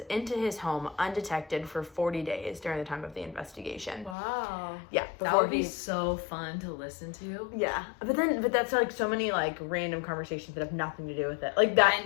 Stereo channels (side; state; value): right; drops out; at 4.2 s